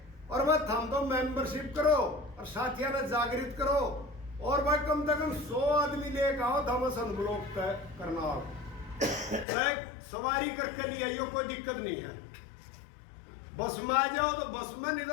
और वह हम तो मेंबरशिप करो और साथियों ने जागृत करो, और भाई कम से कम 100 आदमी लेकर आओ, थॉमसन ब्लॉक तय करना। सवारी करके लिए आइयो, कोई दिक्कत नहीं है। बस में आ जाओ तो बस में, नहीं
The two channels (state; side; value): drops out; right; at 9.5 s